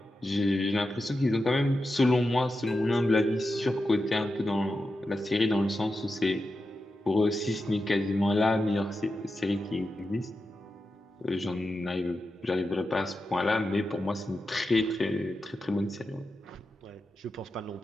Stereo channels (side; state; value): both; normal; correlation 0.90